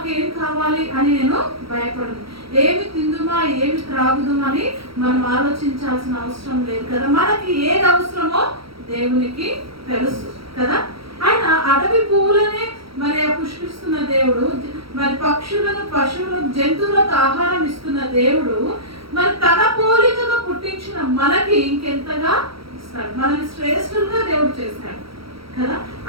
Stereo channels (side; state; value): left; late; 0.75 ms